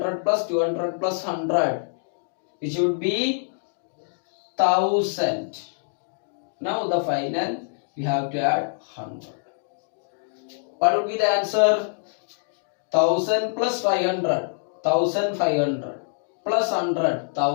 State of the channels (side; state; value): right; silent; digital silence